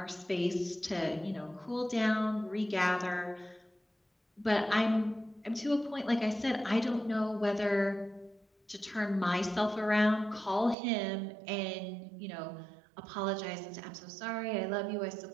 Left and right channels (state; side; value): drops out; left; at 10.8 s